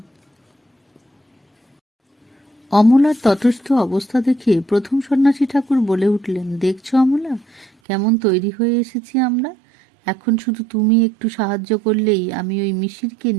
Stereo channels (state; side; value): drops out; left; at 7.7 s